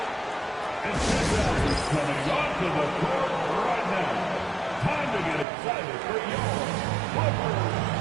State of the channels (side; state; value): left; drops out; at 5.5 s